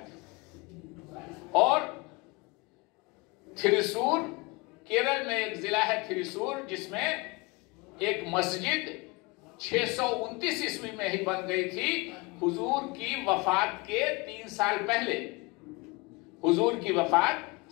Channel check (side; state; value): right; quieter; 25.6 dB